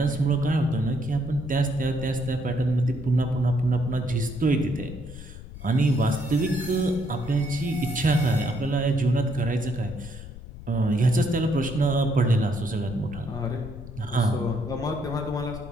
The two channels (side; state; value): left; noise; rumble, 13 dB below the sound